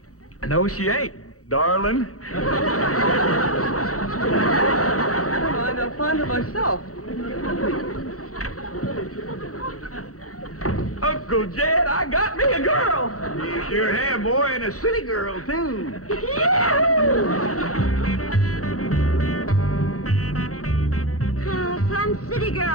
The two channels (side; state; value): right; late; 0.65 ms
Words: No, she ain't, darling. Fine, I'll find her myself. Uncle Jed, I got me a girl. You sure have, boy, and a city girl, too. Some city